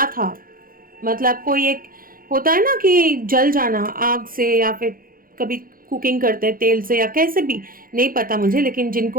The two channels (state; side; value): late; left; 0.41 ms